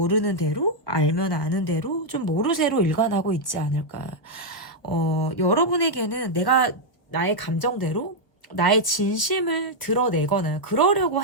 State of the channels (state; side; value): late; right; 1.5 ms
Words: 대로, 알면 아는 대로 좀 모르쇠로 일관하고 있지 않을까. 여러분에게는 내가 나의 감정대로 나의 진심을 드러내거나 그러려고